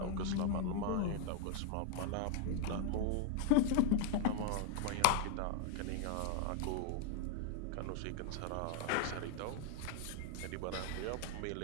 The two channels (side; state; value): both; different; correlation 0.01